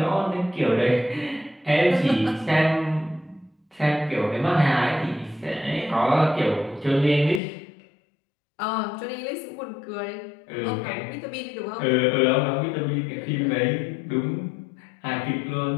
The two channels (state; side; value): drops out; right; at 7.4 s